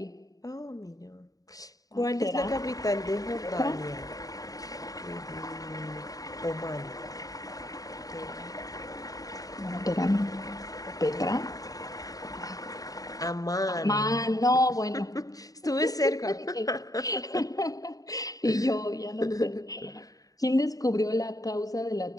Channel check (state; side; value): late; right; 0.18 ms